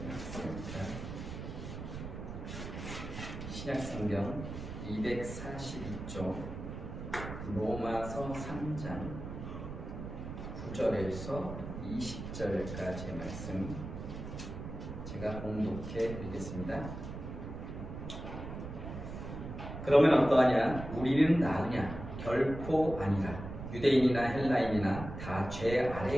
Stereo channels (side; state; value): right; noise; rumble, 8 dB below the sound